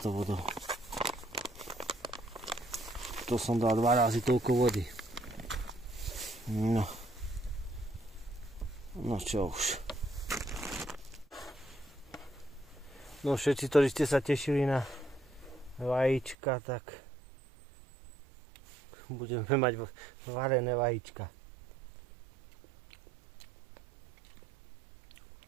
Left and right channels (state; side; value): drops out; left; at 16.4 s